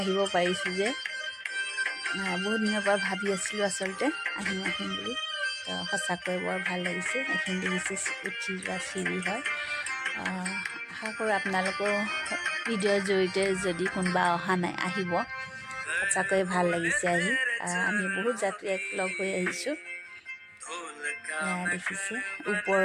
পাৰিছোঁ যে। বহুত দিনৰ পৰা ভাবি আছিলোঁ আচলতে আহিম বুলি। তো সঁচাকৈ বৰ ভাল লাগিছে। এইখিনি দেখিছে উঠি যোৱা চিৰি হয়। আশা কৰোঁ আপোনালোকেও ভিডিঅ'ৰ জৰিয়তে যদি কোনোবা অহা নাই আহিব, সঁচাকৈ ভাল লাগিছে আহি। আমি বহুত যাত্ৰী লগ হৈ আহিছোঁ। দেখিছে ওপৰৰ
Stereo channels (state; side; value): identical; both; correlation 1.00